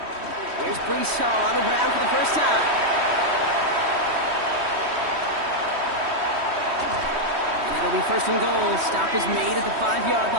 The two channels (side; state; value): left; late; 3.1 ms